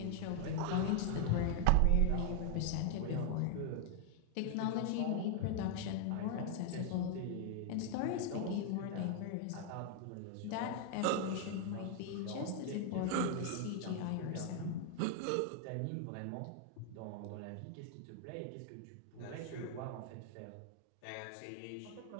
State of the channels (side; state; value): both; different; correlation 0.00